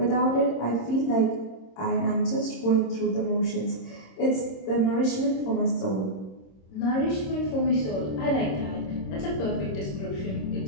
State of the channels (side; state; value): right; late; 26 ms